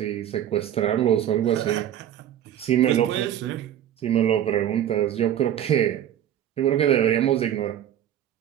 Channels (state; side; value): quieter; left; 10.8 dB